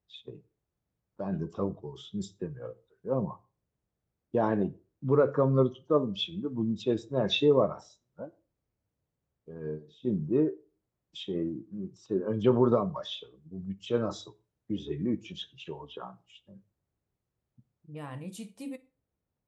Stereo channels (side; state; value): both; identical; correlation 1.00